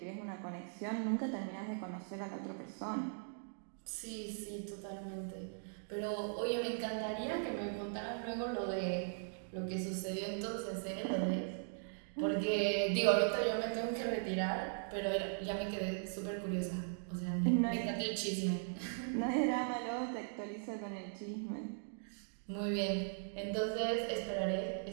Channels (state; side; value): silent; left; digital silence